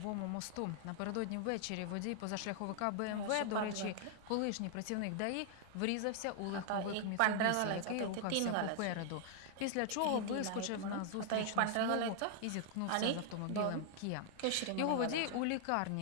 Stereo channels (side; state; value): both; different; correlation 0.00